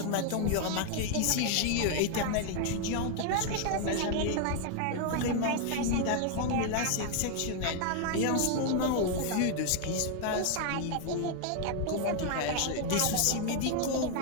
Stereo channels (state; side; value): different; both; correlation 0.00